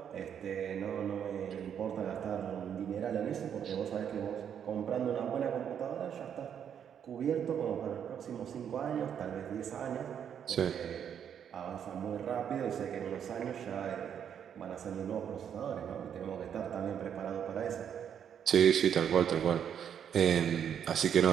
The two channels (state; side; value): quieter; left; 8.5 dB